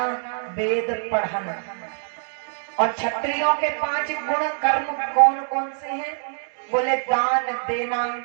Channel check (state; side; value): silent; left; digital silence